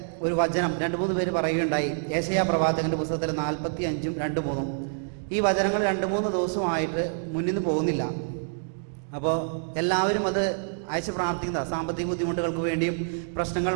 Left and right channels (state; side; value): silent; left; digital silence